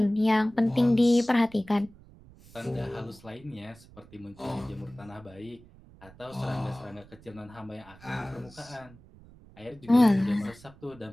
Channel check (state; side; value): noise; right; rumble, 23 dB below the sound